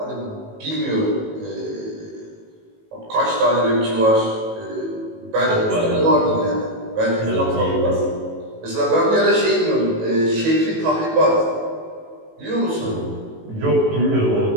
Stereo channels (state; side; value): late; left; 18 ms